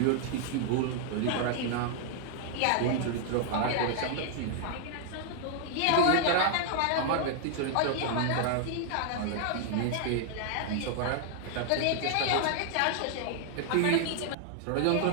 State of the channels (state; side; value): different; both; correlation -0.01